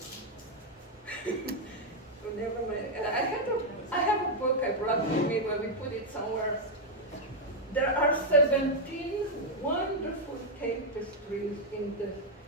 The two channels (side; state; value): both; normal; correlation 0.00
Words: Oh, never mind. I have a book I brought with me where we put it somewhere. There are 17 wonderful tapestries in the